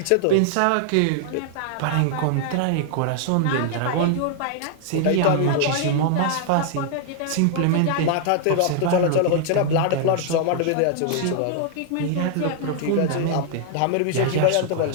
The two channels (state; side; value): different; both; correlation -0.01